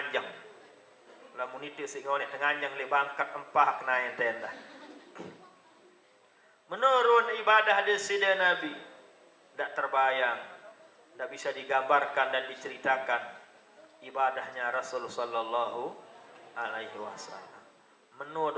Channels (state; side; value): identical; both; correlation 1.00